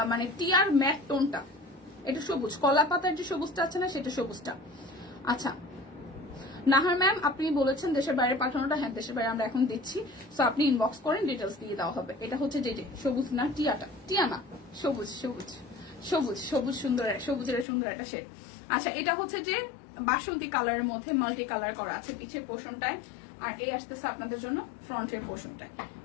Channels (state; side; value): drops out; right; at 17.7 s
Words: মানে টিয়ার ম্যাট টোনটা, এটা সবুজ, কলা পাতার যে সবুজটা আছে না সেটা সবুজটা। আচ্ছা নাহার ম্যাম আপনি বলেছেন দেশের বাইরে পাঠানোটা, হ্যাঁ দেশের বাইরে আমরা এখন দিচ্ছি, সো আপনি ইনবক্স করেন, ডিটেলস দিয়ে দেওয়া হবে। এটা হচ্ছে যে সবুজ না টিয়াটা, টিয়া না সবুজ, সবুজ সবুজ সবুজ সুন্দর, সবুজের সুন্দর একটা শেড। আচ্ছা এটা হচ্ছে যে বাসন্তী কালারের মধ্যে মাল্টি কালার করা আছে পিছের পোর্শনটায়, আর এই আসতেছে আপনাদের জন্য ফ্রন্টের পোর্শনটায়।